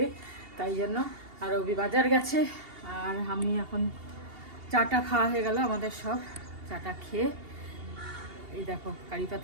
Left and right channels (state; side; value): late; left; 2.8 ms